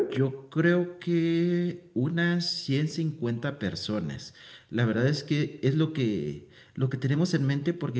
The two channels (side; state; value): both; identical; correlation 1.00